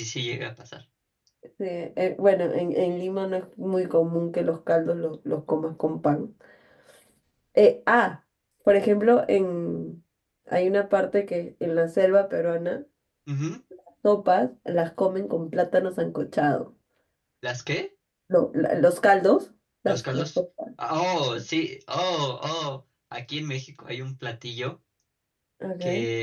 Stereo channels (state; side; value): identical; both; correlation 1.00